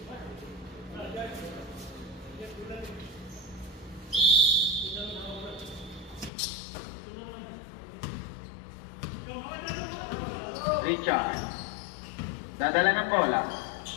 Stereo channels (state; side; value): drops out; right; at 6.3 s